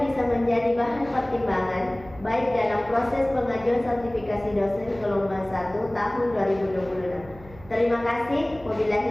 bisa menjadi bahan pertimbangan baik dalam proses pengajuan sertifikasi dosen gelombang 1 tahun 2026 Terima kasih.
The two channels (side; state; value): right; noise; hum, 20 dB below the sound